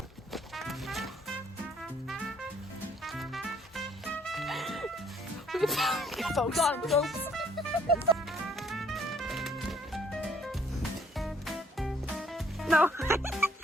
Folks. Gone, folks. No.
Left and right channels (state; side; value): normal; both; correlation 0.65